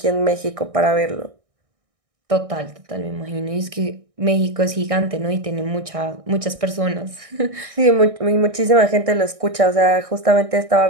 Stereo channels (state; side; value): late; left; 1.6 ms